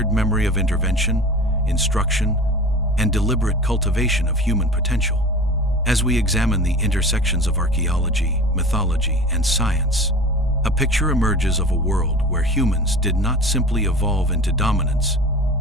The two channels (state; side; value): normal; both; correlation 0.36